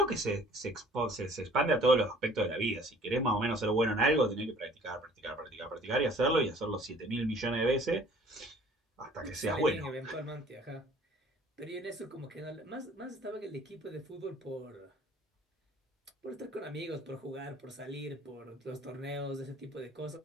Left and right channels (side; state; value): both; normal; correlation 0.53